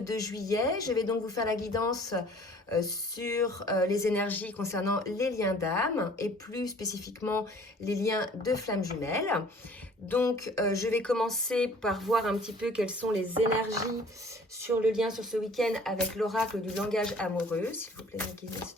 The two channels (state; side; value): normal; both; correlation 0.52